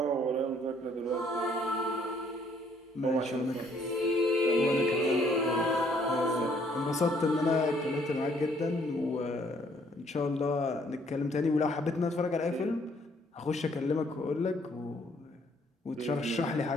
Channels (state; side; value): normal; both; correlation 0.65